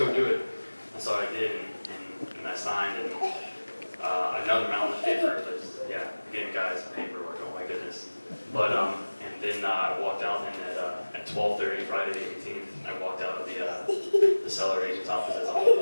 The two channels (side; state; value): both; inverted; correlation -1.00